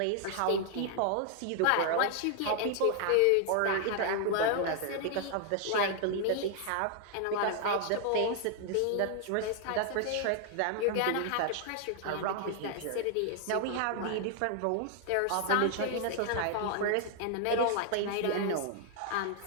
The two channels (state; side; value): different; both; correlation 0.00